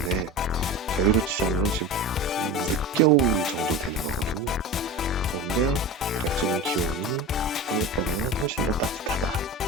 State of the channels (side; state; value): both; normal; correlation 0.29